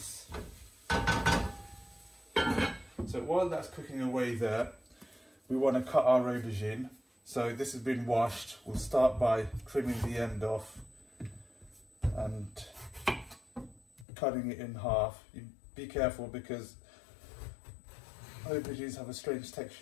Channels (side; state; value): right; drops out; at 14.1 s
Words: So while that's cooking away there, we want to cut our aubergine. So this has been washed. We'll start by trimming the end off and cutting it in half. You be careful because aubergines have a strange